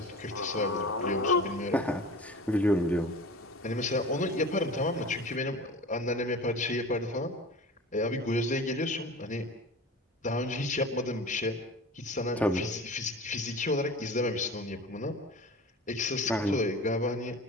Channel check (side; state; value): both; normal; correlation 0.37